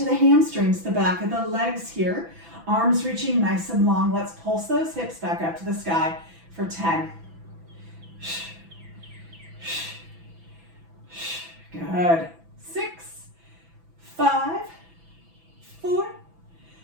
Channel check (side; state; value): left; late; 6.0 ms